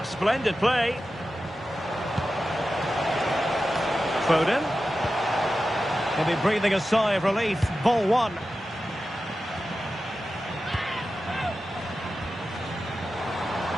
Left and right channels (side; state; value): both; normal; correlation 0.92